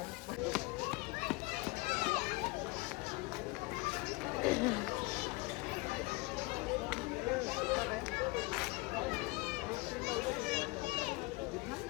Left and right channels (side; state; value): right; quieter; 24.1 dB